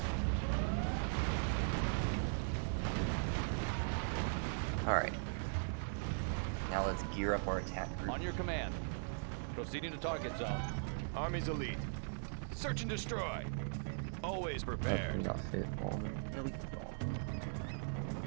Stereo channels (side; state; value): left; silent; digital silence